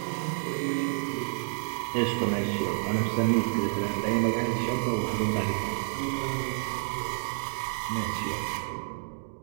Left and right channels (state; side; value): silent; left; digital silence